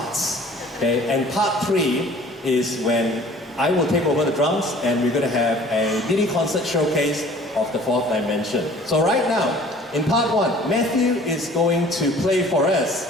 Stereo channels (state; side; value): normal; both; correlation 0.50